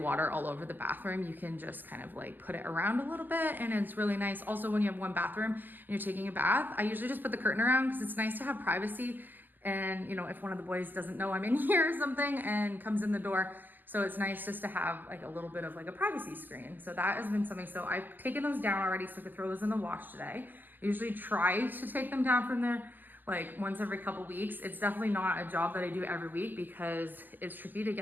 all over the bathroom. You can just kind of like put it around a little bit, and it's really nice. Also, when you have one bathroom and you're taking a bath, I usually just put the curtain around because it's nice to have privacy. And you know, if one of the boys doesn't know I'm in here or something and comes in the door, so it's nice just to have like a little bit of like a privacy screen. So that has been something. So I've taken those down already so I could throw those in the wash today. I usually try to take them down from there like once every couple weeks. It's definitely not a job that I do every week because it's tricky to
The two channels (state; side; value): late; left; 0.090 ms